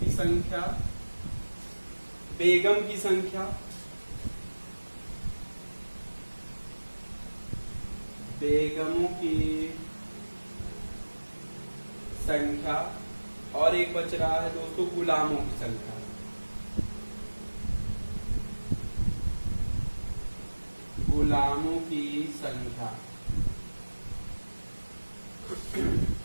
संख्या, बेगम की संख्या, बेगमों की संख्या, और एक बच रहा है दोस्तों गुलामों की संख्या। गुलामों की संख्या।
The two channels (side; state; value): both; inverted; correlation -1.00